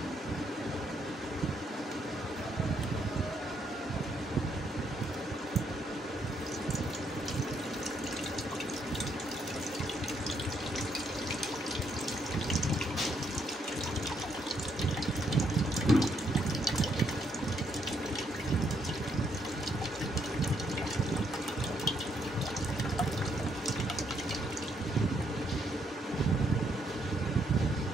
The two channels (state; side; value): normal; both; correlation 0.74